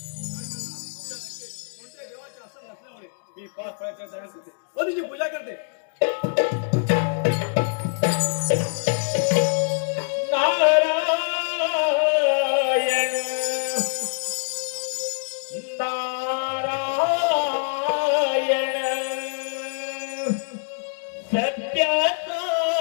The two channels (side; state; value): right; silent; digital silence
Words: कोणत्या देवाचे आसन नसल्यामुळे मी पाच फळाच्या तयार करते व तिची पूजा करते. नारायण नारायण सत्याचा